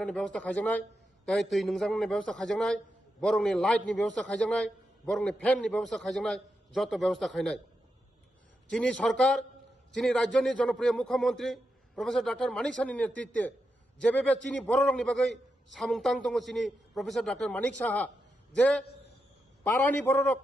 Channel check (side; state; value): both; normal; correlation 0.86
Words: ব্যবস্থা খাইজানাই তাই তুই নংজাংনি ব্যবস্থা খাইজানাই বরংনি লাইটনি ব্যবস্থা খাইজানাই বরংনি ফ্যাননি ব্যবস্থা খাইজানাই যত ব্যবস্থা খাইনাই চিনি সরকার চিনি রাজ্যনি জনপ্রিয় মুখ্যমন্ত্রী প্রফেসর ডক্টর মানিক সাহানি নেতৃত্বে যেভাবে চিনি বড় রংনি বাগৈ সামুংতাং দङ চিনি প্রফেসর ডক্টর মানিক সাহা যে পারানি বড়রক